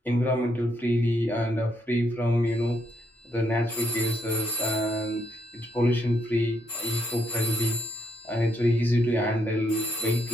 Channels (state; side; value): normal; both; correlation 0.75